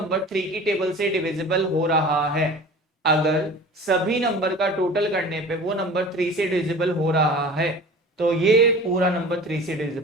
3 की टेबल से डिविजिबल हो रहा है, अगर सभी नंबर का टोटल करने पे वो नंबर 3 से डिविजिबल हो रहा है तो ये पूरा नंबर 3 से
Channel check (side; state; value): both; normal; correlation 0.40